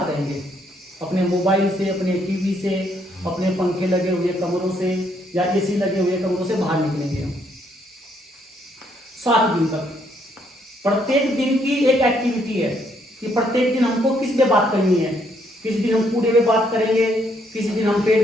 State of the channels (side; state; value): both; normal; correlation 0.71